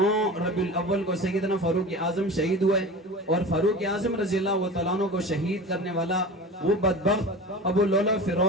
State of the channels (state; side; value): normal; both; correlation 0.33